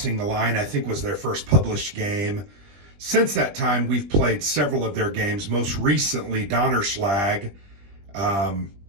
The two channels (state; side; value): late; left; 20 ms